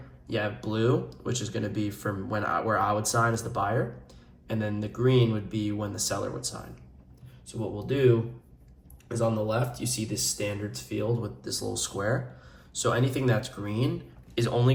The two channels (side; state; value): both; identical; correlation 1.00